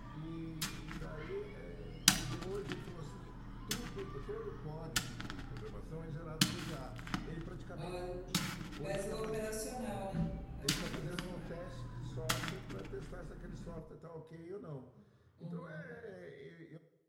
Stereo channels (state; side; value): identical; both; correlation 1.00